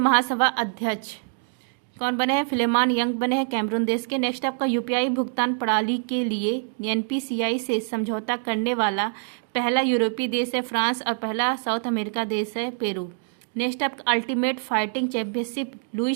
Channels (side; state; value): left; silent; digital silence